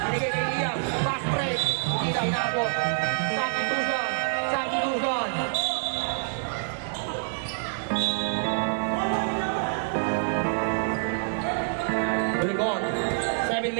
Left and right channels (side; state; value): left; silent; 60 dB below the other